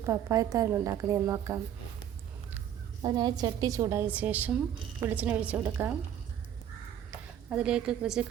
പപ്പായത്താരൻ ഉണ്ടാക്കുന്നതെന്ന് നോക്കാം. അതിനായി ചട്ടി ചൂടായ ശേഷം വെളിച്ചെണ്ണ ഒഴിച്ച് കൊടുക്കാം. അതിലേക്ക് കുറച്ച്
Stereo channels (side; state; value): left; quieter; 10.1 dB